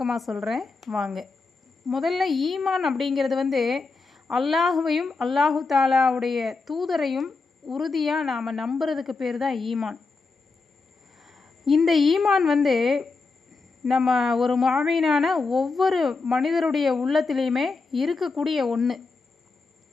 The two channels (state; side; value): quieter; right; 4.1 dB